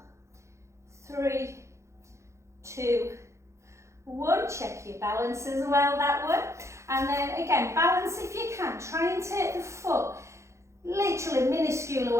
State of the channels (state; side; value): late; left; 0.14 ms